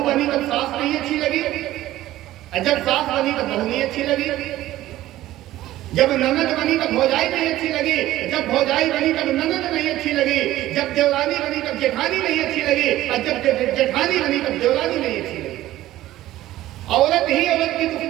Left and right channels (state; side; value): quieter; left; 15.0 dB